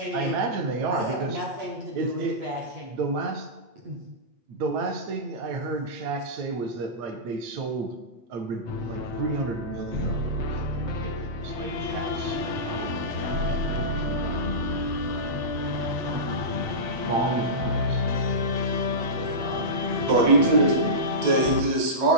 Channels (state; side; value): late; left; 8.5 ms